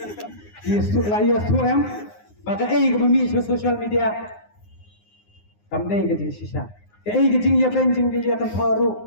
yesu la yesu am baga ei ko mi social media kamdei ke jing sisa ke ei ke jing ya ben jing dia kan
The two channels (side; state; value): right; late; 9.6 ms